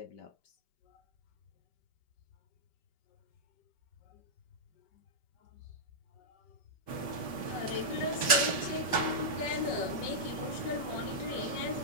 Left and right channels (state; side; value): late; right; 5.2 ms